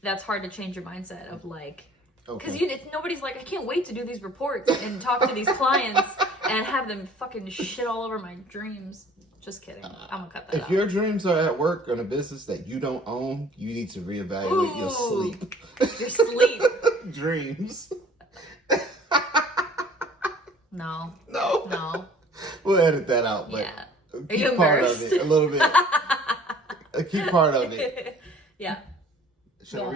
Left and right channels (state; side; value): normal; both; correlation 0.52